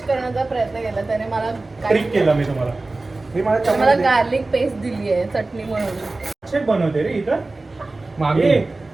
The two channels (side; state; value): left; quieter; 3.2 dB